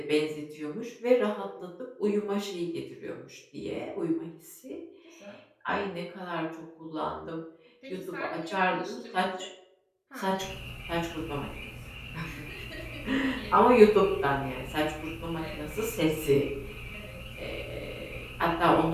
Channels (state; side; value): identical; both; correlation 1.00